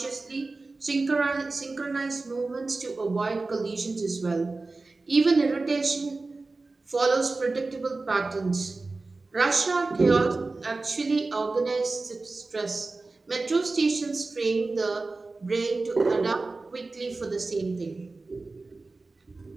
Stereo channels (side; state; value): left; quieter; 3.5 dB